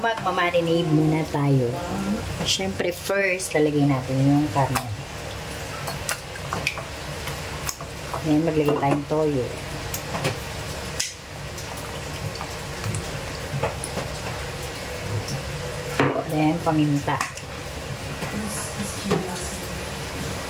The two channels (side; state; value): both; identical; correlation 1.00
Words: muna tayo. Siyempre, first, lalagay natin yung karne. Then, maglagay tayong toyo. Then, paminta.